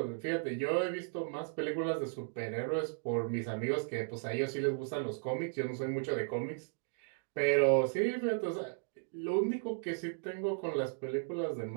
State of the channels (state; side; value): silent; left; digital silence